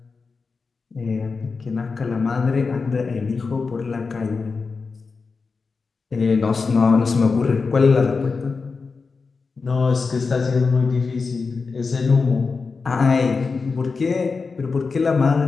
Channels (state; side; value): quieter; right; 4.6 dB